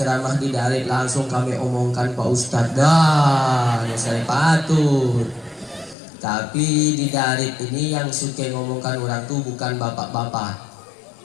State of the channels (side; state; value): right; drops out; at 6.0 s